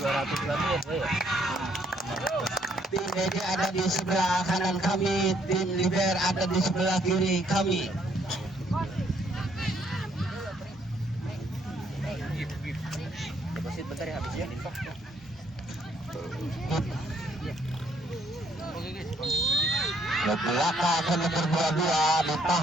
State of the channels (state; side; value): normal; both; correlation 0.68